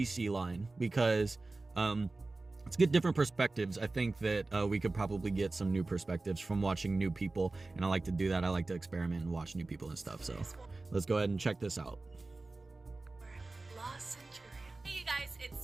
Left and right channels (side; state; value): left; quieter; 3.3 dB